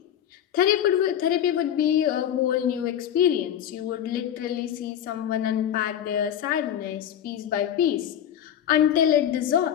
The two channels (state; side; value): quieter; right; 10.0 dB